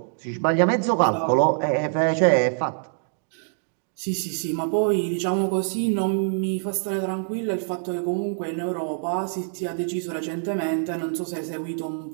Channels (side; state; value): left; silent; digital silence